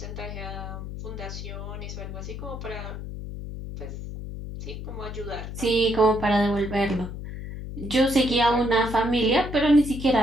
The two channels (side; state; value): left; noise; hum, 8 dB below the sound